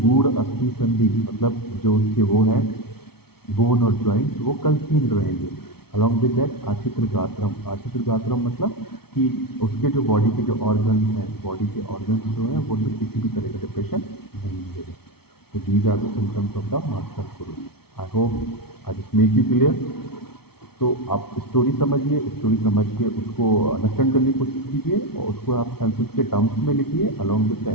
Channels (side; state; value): right; late; 0.95 ms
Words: अस्थि संधि मतलब जो उसके वो है बोन और जॉइंट्स वो कंसील्ड रहेंगे। अलॉन्ग विद दैट आचित्र गात्रम, आचित्र गात्रम मतलब कि उसके जो बॉडी के जो ऑर्गन्स हैं, बॉडी के ऑर्गन्स जो हैं वो तो किसी भी तरह का डिप्रेशन नहीं मिलेगा। तो these are the symptoms of the master guru. I hope I just make you clear. तो आप स्टोरी समझिए, स्टोरी समझ के उसको अंडरस्टैंड करने की कोशिश कीजिए और उसको आप संस्कृत के टर्म्स में लिखिए along with the